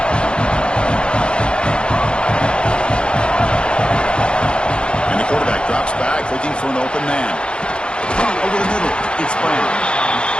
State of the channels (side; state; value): right; late; 0.054 ms